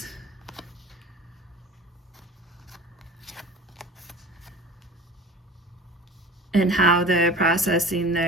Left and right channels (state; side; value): normal; both; correlation 0.39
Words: And how they're processing